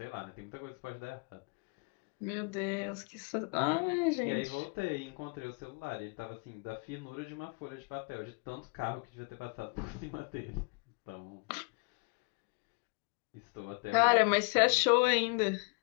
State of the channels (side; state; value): right; quieter; 33.3 dB